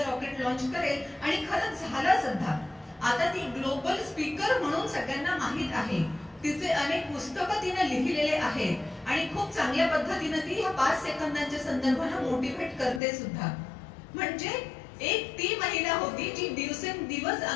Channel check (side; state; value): right; drops out; at 13.0 s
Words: रॉकेट लॉन्च करेल आणि खरंच झालं सुद्धा. आता ती ग्लोबल स्पीकर म्हणून सगळ्यांना माहित आहे, तिचे अनेक पुस्तकं तिने लिहिलेले आहेत आणि खूप चांगल्या पद्धतीने ती ह्या 5 सेकंदांच्या संदर्भाने मोटिवेट करते सुद्धा. म्हणजे एक ती महिला होती जी दिवसेंदिवस